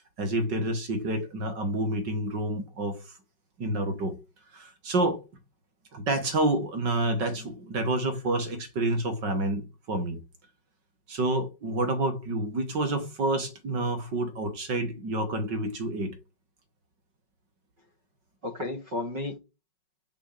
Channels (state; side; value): late; left; 5.4 ms